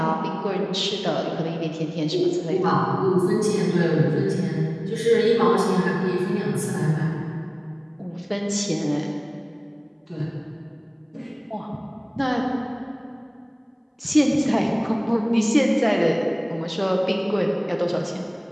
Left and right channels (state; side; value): identical; both; correlation 1.00